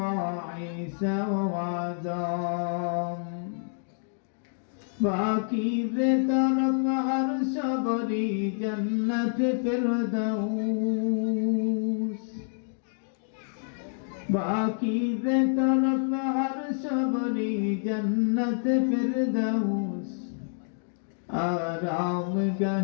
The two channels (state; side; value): silent; right; digital silence